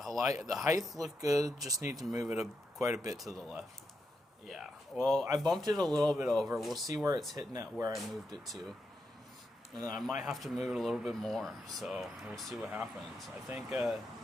height looked good, just need to move it quite a bit to the left. Yeah, well, I bumped it a little bit over. We'll see where it's hitting at where I moved it to. And then I might have to move it a little bit more, so we'll see what happens. I think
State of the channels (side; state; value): both; normal; correlation 0.84